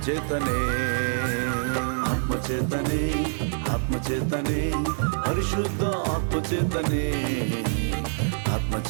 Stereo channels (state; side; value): silent; left; digital silence